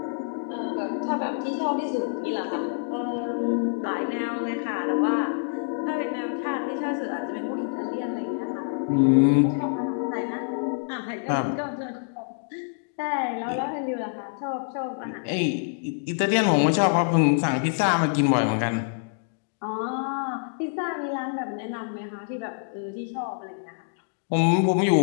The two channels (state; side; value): silent; right; digital silence